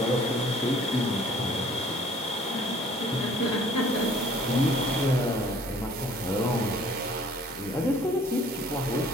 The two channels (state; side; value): normal; both; correlation 0.54